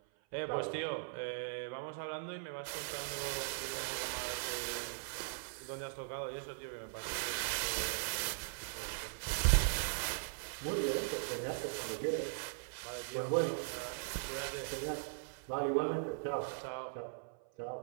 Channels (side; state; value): left; silent; 51 dB below the other